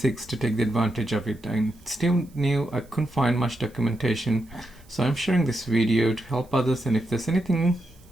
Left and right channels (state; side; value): noise; right; hiss, 30 dB below the sound